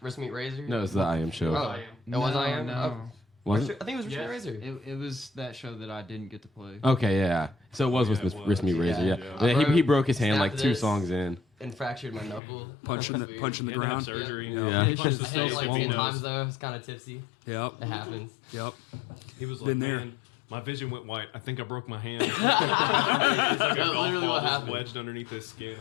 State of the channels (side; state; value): right; drops out; at 12.4 s